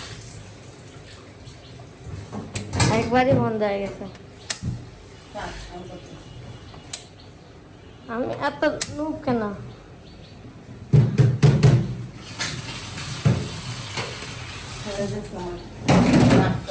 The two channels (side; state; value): both; identical; correlation 1.00